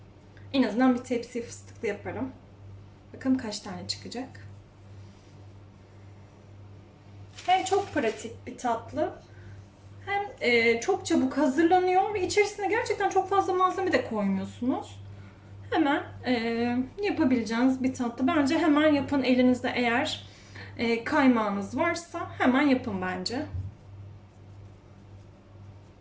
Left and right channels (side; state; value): both; identical; correlation 1.00